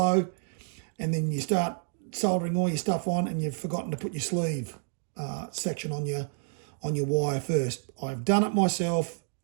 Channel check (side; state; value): left; silent; 58 dB below the other